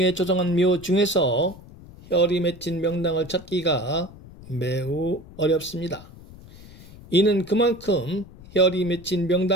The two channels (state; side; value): noise; left; rumble, 19 dB below the sound